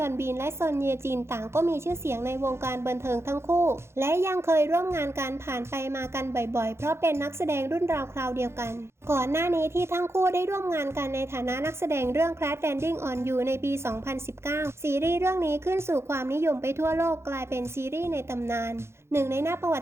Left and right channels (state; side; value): late; left; 0.12 ms